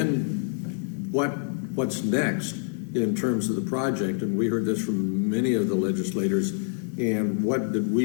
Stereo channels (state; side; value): silent; right; digital silence